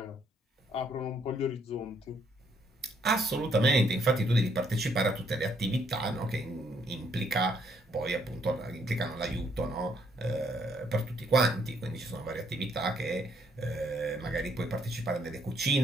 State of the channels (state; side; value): normal; both; correlation 0.70